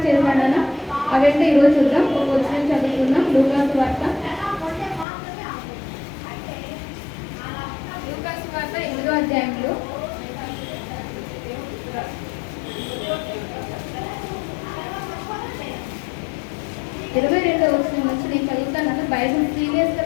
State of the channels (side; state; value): right; drops out; at 5.1 s